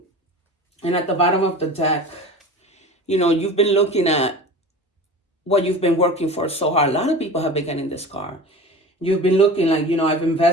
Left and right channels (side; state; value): both; normal; correlation 0.35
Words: at the bottom of the deck, you've been looking at what you've been working for so hard. A lot of people have been getting this car. You've been looking like, I've